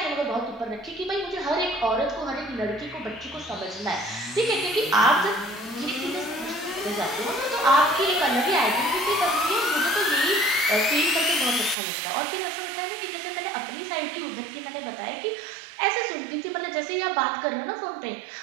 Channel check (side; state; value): left; drops out; at 11.8 s